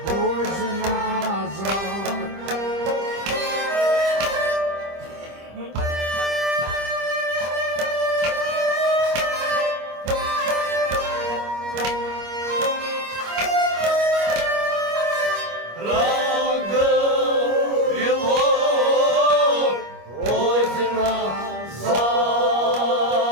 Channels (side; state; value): left; late; 25 ms